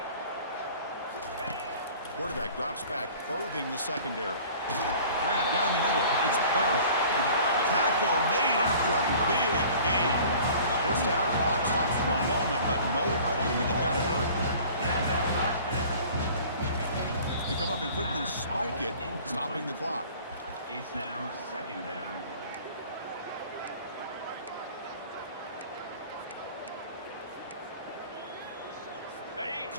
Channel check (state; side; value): inverted; both; correlation -0.46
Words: Quarterback drops back, probing the secondary. Grab down the middle. It's Bell. Tackle made after a big gain. First down, clock stops for a moment, but no huddle here. They've got to hurry. They come up and quickly spike it, stopping the clock. It's now second down.